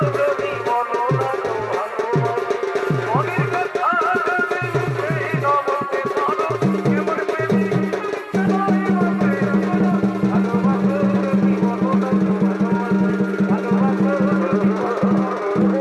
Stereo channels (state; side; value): identical; both; correlation 1.00